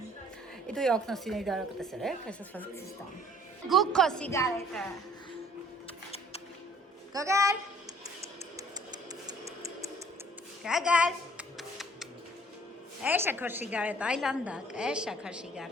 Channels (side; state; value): both; normal; correlation 0.55